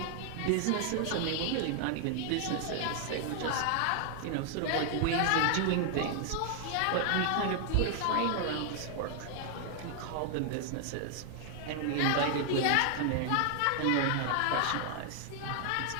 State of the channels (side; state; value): both; different; correlation 0.00